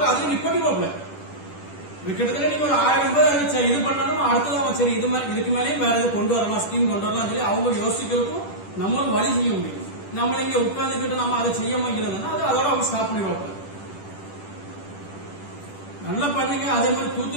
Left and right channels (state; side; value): late; right; 10 ms